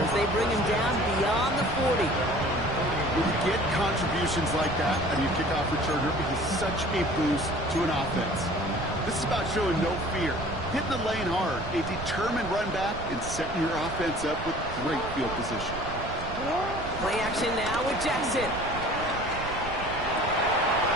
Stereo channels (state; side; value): noise; right; rumble, 9 dB below the sound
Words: they bring him down beyond the 40. When you get contributions like that and you kickoff returner, it is such a boost to an offense. This is about showing no fear, hitting the lane hard, a determined run back, and setting your offense up with great field position. Play action now with Jackson.